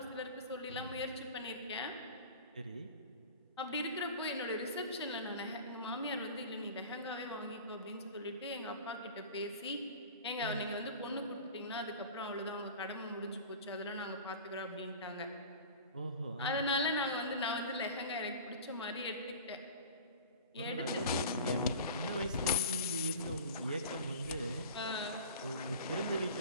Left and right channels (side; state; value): both; inverted; correlation -0.37